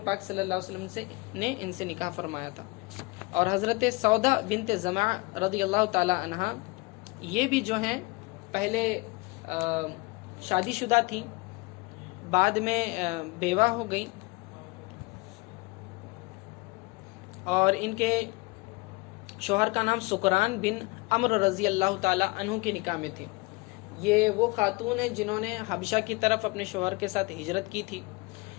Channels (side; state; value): right; quieter; 25.4 dB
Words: پاک صلی اللہ علیہ وسلم نے ان سے نکاح فرمایا تھا۔ اور حضرت سودا بنت زمع رضی اللہ تعالی عنہ یہ بھی جو ہیں پہلے شادی شدہ تھیں، بعد میں بیوہ ہو گئیں، اور ان کے شوہر کا نام سکران بن عمر رضی اللہ تعالی عنہ کے نکاح میں تھی۔ یہ وہ خاتون ہیں جنہوں نے حبشہ کی طرف اپنے شوہر کے ساتھ ہجرت کی تھی۔